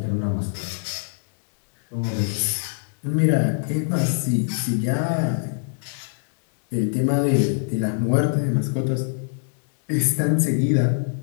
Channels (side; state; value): right; silent; digital silence